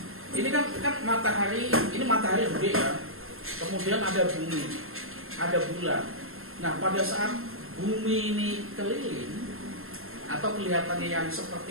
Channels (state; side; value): late; left; 0.61 ms